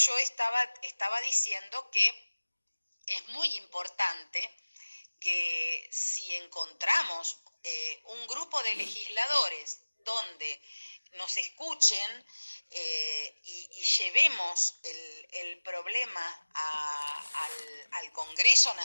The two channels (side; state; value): both; inverted; correlation -1.00